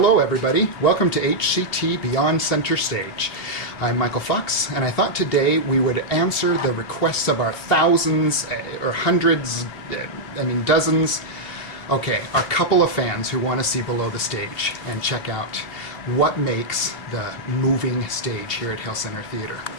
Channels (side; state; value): right; late; 2.7 ms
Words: everybody. Welcome to HCT Beyond Center Stage. I'm Michael Fox, and I thought today we would answer the requests of our thousands or hundreds, dozens, our couple of fans who want to see below the stage and check out what makes the moving stage here at Hale Center Theater.